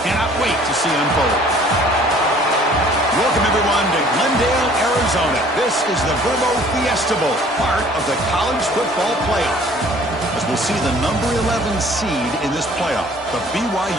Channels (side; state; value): both; normal; correlation 0.54